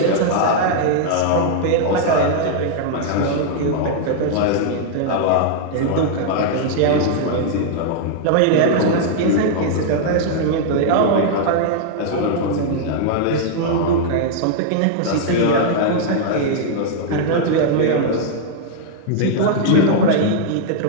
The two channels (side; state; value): both; different; correlation -0.01